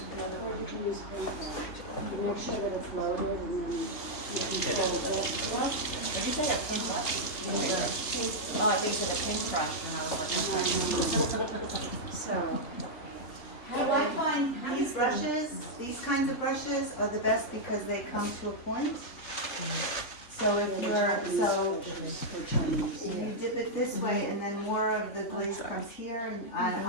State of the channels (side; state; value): right; late; 3.5 ms